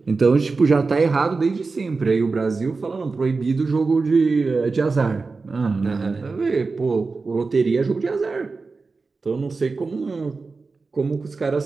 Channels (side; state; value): left; quieter; 4.1 dB